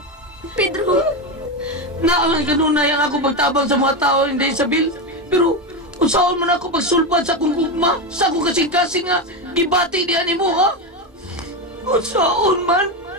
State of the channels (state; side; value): normal; both; correlation 0.14